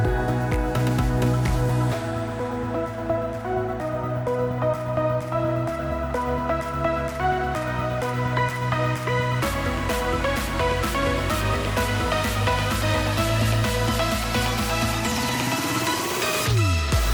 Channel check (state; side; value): identical; both; correlation 1.00